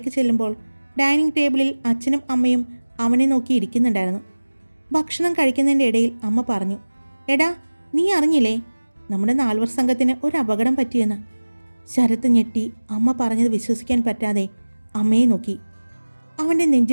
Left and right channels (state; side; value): inverted; both; correlation -1.00